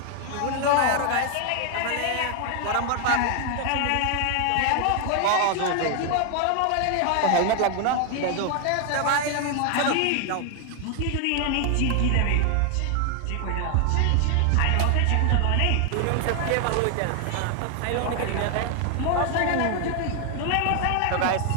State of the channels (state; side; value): different; both; correlation 0.00